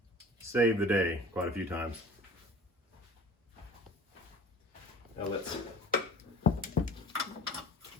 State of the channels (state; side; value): normal; both; correlation 0.43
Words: save the day quite a few times. Now let's